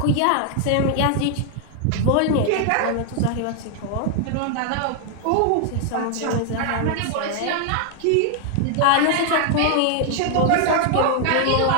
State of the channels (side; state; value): both; different; correlation 0.00